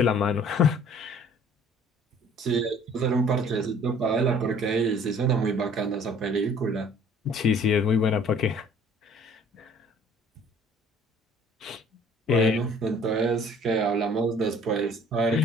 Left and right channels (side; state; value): both; normal; correlation 0.53